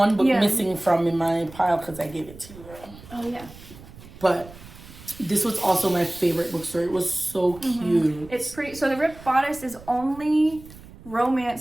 book missing from in my pile because I gave it to you. Oh, yeah. But this was also my favorite bookstore. It was so cute. It's pretty. So the Ripped Bodice is only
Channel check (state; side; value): noise; right; rumble, 19 dB below the sound